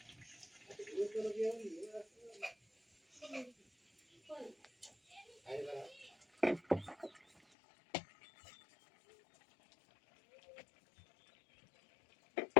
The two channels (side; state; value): right; drops out; at 7.6 s